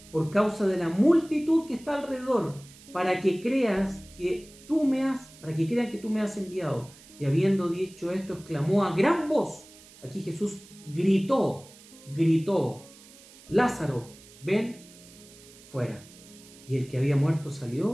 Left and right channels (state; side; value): noise; right; hiss, 22 dB below the sound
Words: por causa de la multitud que está alrededor, para que crean que tú me has enviado. Y habiendo dicho esto, exclamó a gran voz. Aquí Jesús gritó: Lázaro, ven fuera. Y el que había muerto